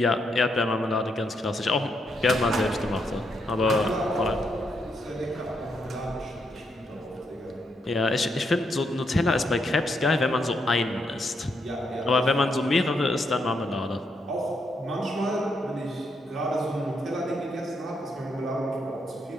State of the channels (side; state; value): both; normal; correlation 0.78